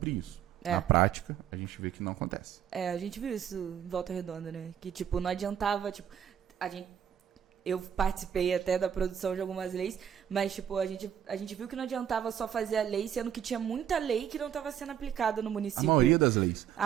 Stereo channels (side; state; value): left; quieter; 9.4 dB